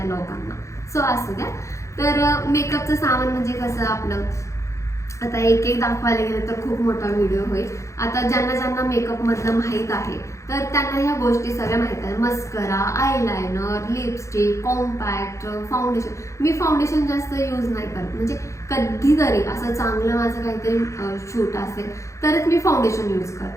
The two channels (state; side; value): late; right; 0.15 ms